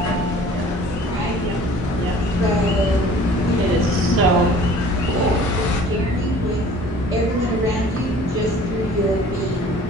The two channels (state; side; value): normal; both; correlation 0.49